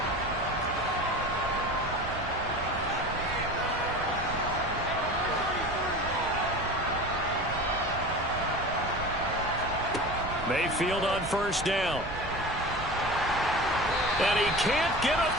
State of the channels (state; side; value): noise; right; rumble, 12 dB below the sound